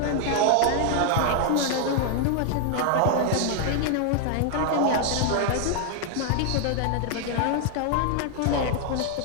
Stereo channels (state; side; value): different; both; correlation 0.00